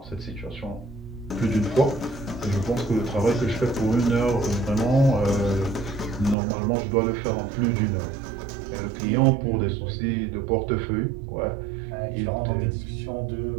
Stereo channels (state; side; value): drops out; left; at 6.4 s